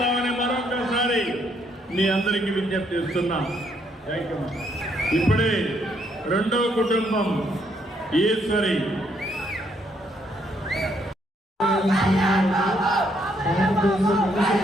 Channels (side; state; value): both; normal; correlation 0.72